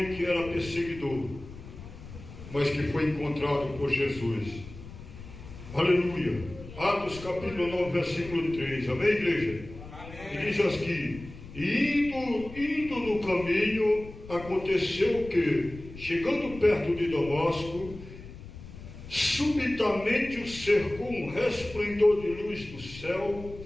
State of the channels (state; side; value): noise; left; rumble, 15 dB below the sound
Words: que era perseguidor, mas que foi encontrado por Jesus. Aleluia. Atos capítulo 9, versículo 3. Amém, igreja? Amém. E diz assim: indo no caminho, aconteceu que, chegando perto de Damasco, subitamente o cercou um resplendor de luz do céu,